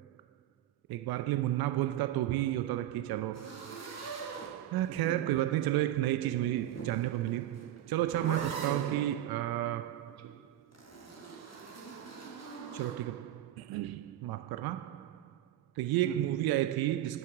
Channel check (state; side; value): quieter; left; 12.8 dB